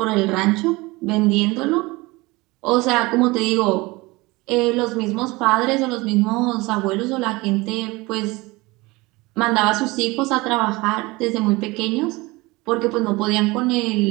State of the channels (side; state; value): left; quieter; 22.7 dB